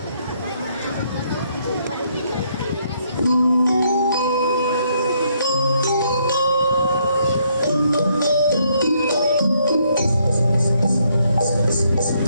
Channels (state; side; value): inverted; both; correlation -0.72